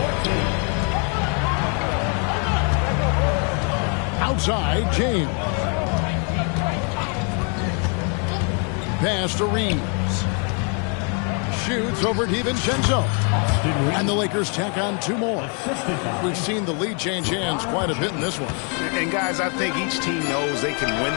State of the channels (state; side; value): quieter; right; 38.6 dB